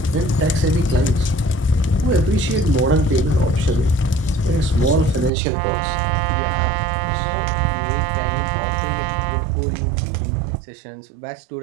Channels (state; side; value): drops out; left; at 5.3 s